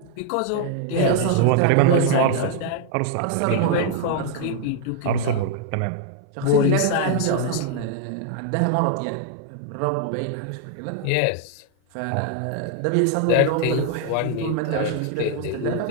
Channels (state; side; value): different; both; correlation 0.00